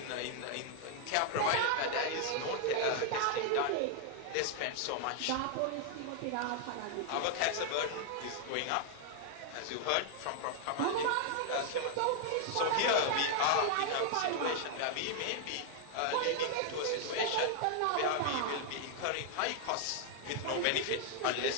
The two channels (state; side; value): different; both; correlation 0.00